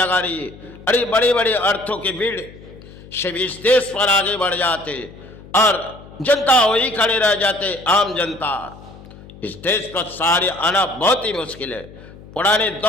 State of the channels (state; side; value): noise; left; hum, 19 dB below the sound